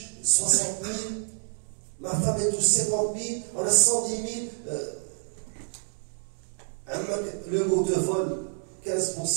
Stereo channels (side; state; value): left; silent; digital silence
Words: 60 000, ma femme elle touche 50 000, on a 110 000, le mot de vol